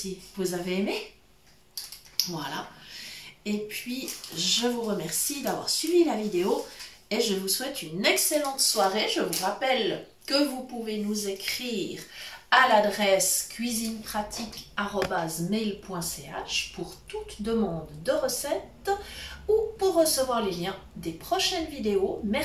vous avez aimé. Voilà. Et puis, je vous remercie d'avoir suivi la vidéo et je vous souhaite une excellente soirée. Je vous rappelle que vous pouvez nous écrire à l'adresse cuisinepratique@mail.ch pour toute demande de recette ou pour recevoir les liens des prochaines vidéos.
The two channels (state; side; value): identical; both; correlation 1.00